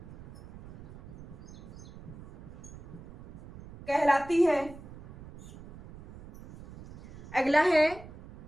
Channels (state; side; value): noise; right; rumble, 16 dB below the sound